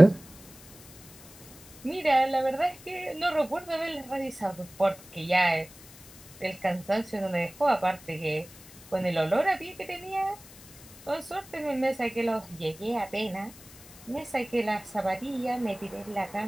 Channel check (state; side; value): noise; left; hiss, 20 dB below the sound